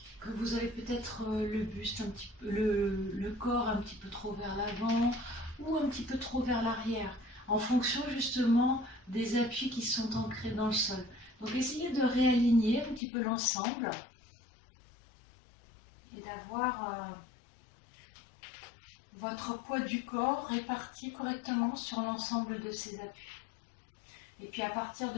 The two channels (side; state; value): right; drops out; at 13.0 s